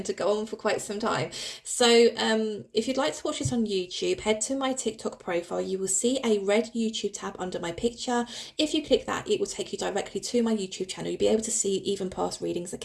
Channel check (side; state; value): both; identical; correlation 1.00